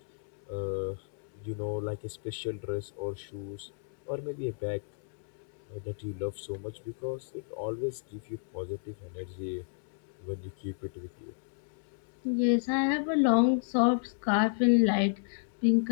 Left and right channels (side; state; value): right; silent; digital silence